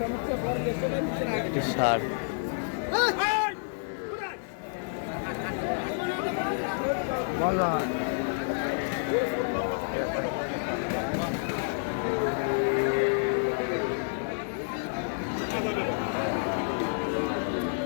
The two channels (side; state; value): right; silent; 58 dB below the other